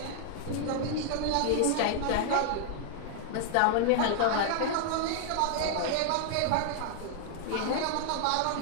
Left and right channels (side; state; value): both; different; correlation -0.01